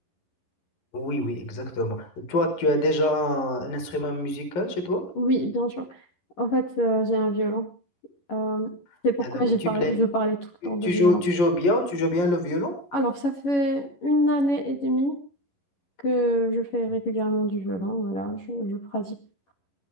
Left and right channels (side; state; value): right; late; 11 ms